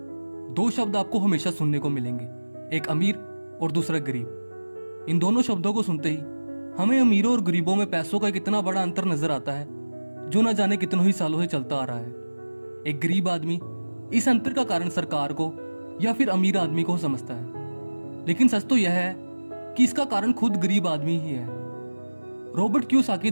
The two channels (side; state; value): both; inverted; correlation -1.00